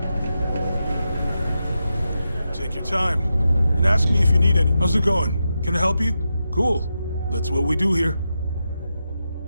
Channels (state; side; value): inverted; both; correlation -0.88